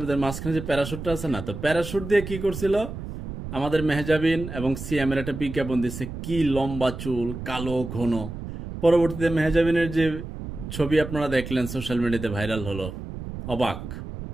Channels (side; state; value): right; noise; rumble, 9 dB below the sound